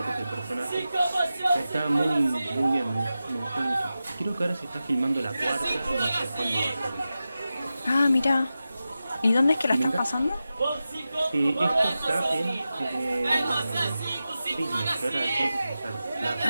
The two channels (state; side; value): inverted; both; correlation -0.93